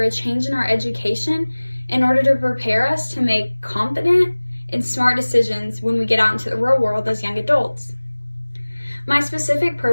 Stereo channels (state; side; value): inverted; both; correlation -1.00